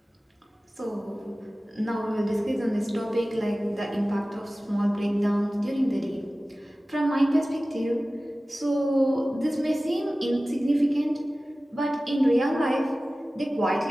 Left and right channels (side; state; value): both; normal; correlation 0.97